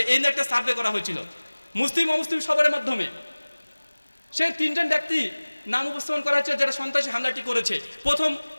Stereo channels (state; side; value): inverted; both; correlation -1.00